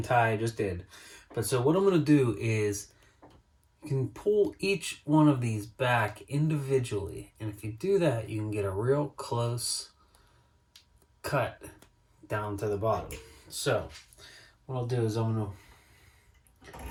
tie I just did. But so what I'm going to do is you can pull each one of these back individually. And if you do that, you can get a real close cut down to the bottom. So what I'll do is I'm going to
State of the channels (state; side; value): identical; both; correlation 1.00